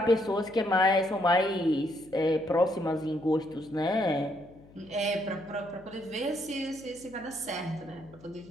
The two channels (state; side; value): noise; left; hum, 24 dB below the sound